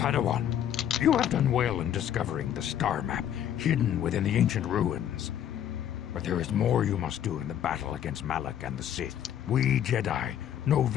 you have done well in discovering the star map hidden within the ancient ruins. But there is more you must do in the battle against Malak and the Sith. We Jedi know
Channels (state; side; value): quieter; right; 10.3 dB